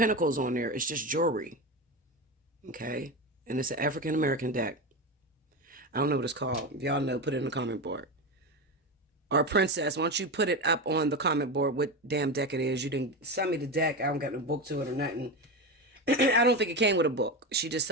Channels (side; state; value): both; normal; correlation 0.19